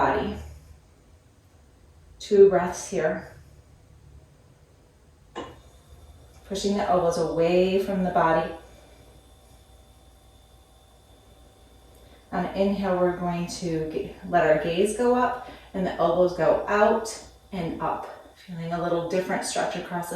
2 breaths here. Pushing the elbows away from the body. On inhale, we're going to let our gaze go up and the elbows go out and up. Feeling a little different stretch across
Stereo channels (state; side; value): identical; both; correlation 1.00